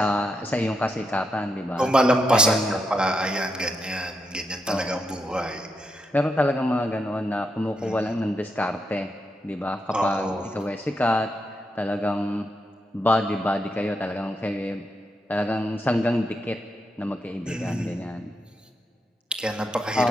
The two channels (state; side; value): normal; both; correlation 0.83